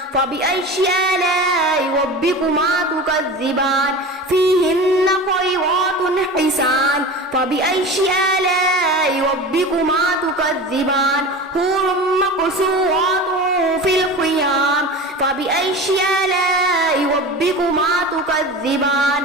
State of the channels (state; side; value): normal; both; correlation 0.32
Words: فبأي آلاء ربكما تكذبان فيهن خيرات حسان فبأي آلاء ربكما تكذبان حور مقصورات في الخيام فبأي آلاء ربكما تكذبان